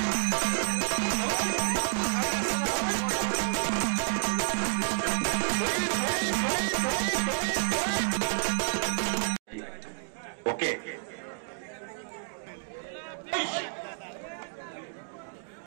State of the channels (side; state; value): left; silent; digital silence